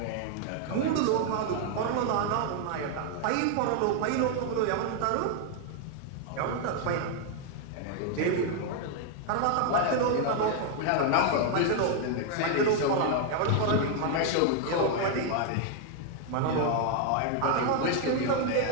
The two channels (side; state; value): both; different; correlation 0.00